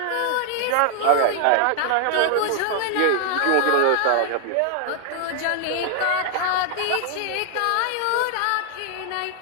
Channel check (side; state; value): both; different; correlation 0.00